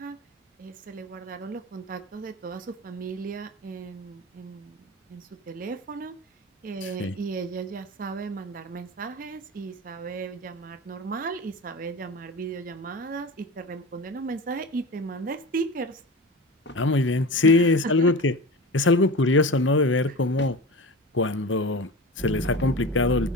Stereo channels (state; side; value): normal; both; correlation 0.30